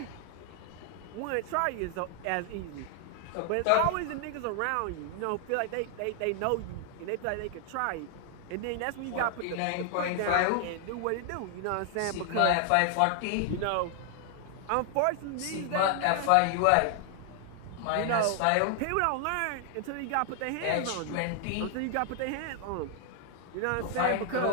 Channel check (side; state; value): both; different; correlation 0.00